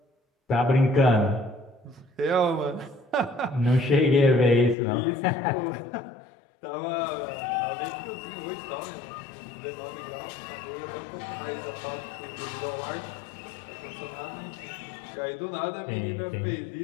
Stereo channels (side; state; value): right; drops out; at 4.8 s